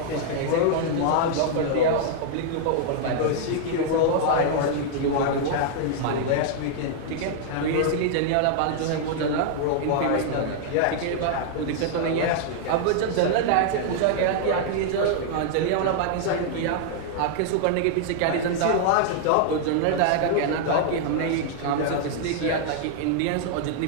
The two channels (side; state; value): both; different; correlation -0.01